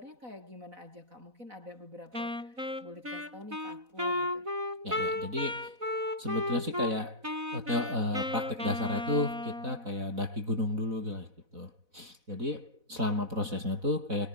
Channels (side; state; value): left; late; 4.0 ms